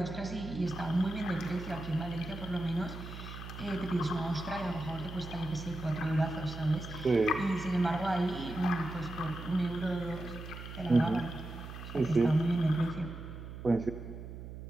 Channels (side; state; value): right; noise; hum, 11 dB below the sound